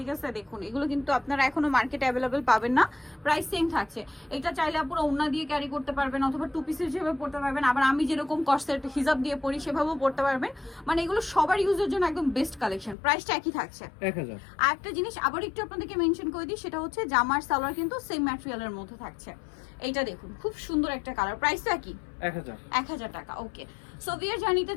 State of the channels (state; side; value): drops out; right; at 13.0 s